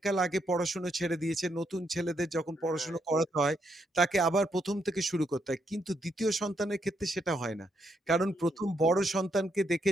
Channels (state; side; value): normal; both; correlation 0.77